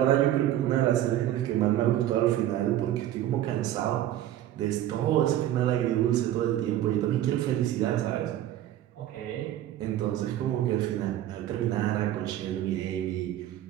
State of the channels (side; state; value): left; quieter; 12.7 dB